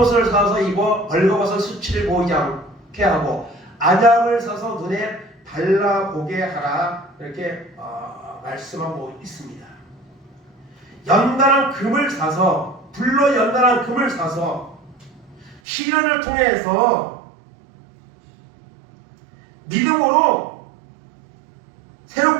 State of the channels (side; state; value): left; drops out; at 15.6 s